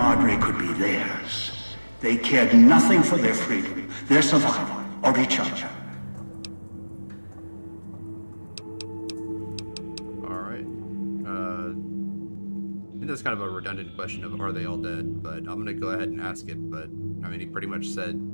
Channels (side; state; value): both; inverted; correlation -1.00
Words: could be theirs, they cared nothing for their freedom, their survival, or each other. That's kind of a redundant question of are they all dead, but I'm gonna go ahead and ask it. But I mean, he pretty much said